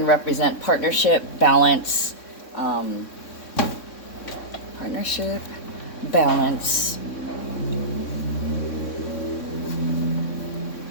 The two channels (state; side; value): late; right; 3.6 ms